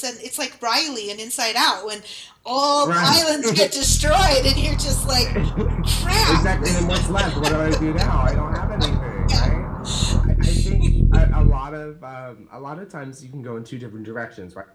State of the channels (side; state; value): both; identical; correlation 1.00